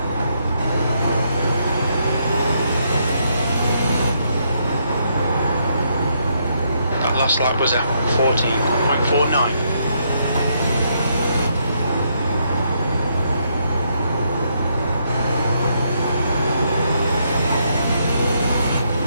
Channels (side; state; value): both; inverted; correlation -0.75